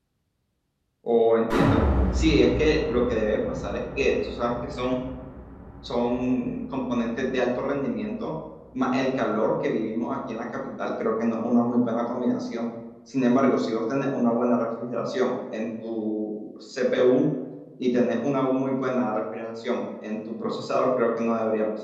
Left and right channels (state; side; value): identical; both; correlation 1.00